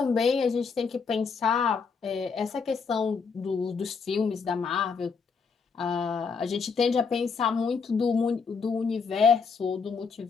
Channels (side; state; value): right; quieter; 5.4 dB